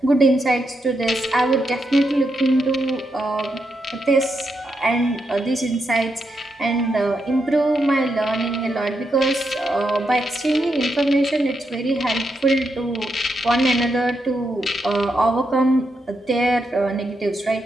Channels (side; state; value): both; normal; correlation 0.83